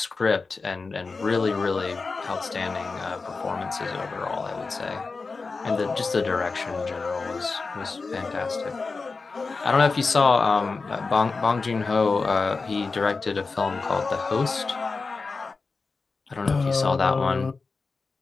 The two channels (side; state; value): right; quieter; 4.2 dB